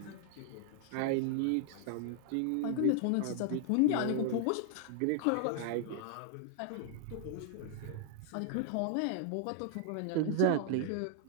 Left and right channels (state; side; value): different; both; correlation 0.00